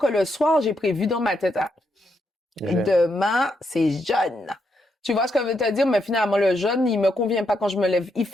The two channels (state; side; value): normal; both; correlation 0.80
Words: le soir, j'ai prévu dans ma tête, demain, c'est jaune. Tu vois ce que je veux te dire? Mais finalement, le jaune, il me convient pas quand je me lève. Il